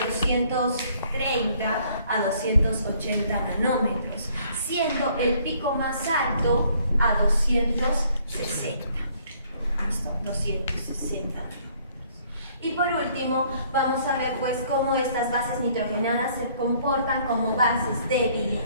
a 280 nanómetros, siendo el pico más alto a 260. ¿Listo? 260. Y por último, vamos a ver pues cómo estas bases nitrogenadas se comportan como bases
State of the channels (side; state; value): both; inverted; correlation -0.62